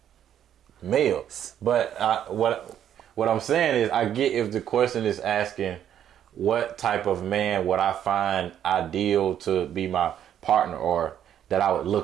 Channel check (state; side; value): quieter; left; 10.1 dB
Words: male. But what I'm saying is I get if the question is asking what type of man would I find ideal to be my partner or that I would